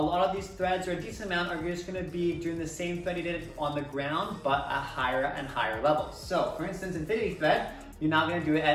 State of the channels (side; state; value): both; identical; correlation 1.00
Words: lot of these threads, or a decent amount, are just gonna be doing the same thread you did on the ground, but at higher and higher levels. So, for instance, infinity thread, you're now gonna do it